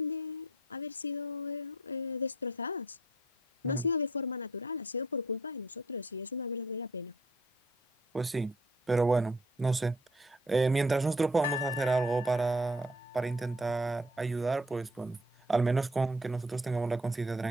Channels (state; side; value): normal; both; correlation 0.60